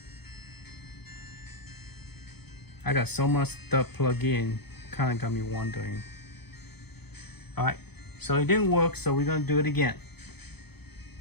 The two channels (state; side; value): late; right; 0.98 ms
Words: I got so much stuff plugged in, kind of got me wondering. All right, so it didn't work, so we're gonna do it again.